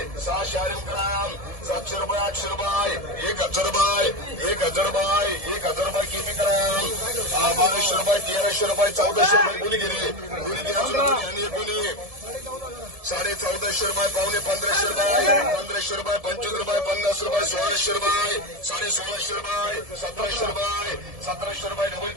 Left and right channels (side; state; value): left; late; 1.7 ms